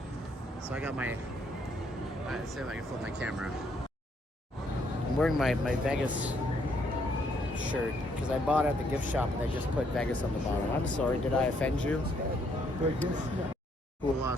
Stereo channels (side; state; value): both; normal; correlation 0.71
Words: So I got my, let's see if I can flip my camera. I'm wearing my Vegas shirt because I bought it at the gift shop and they just put Vegas on the bottom. I'm sorry, did I offend you? Cool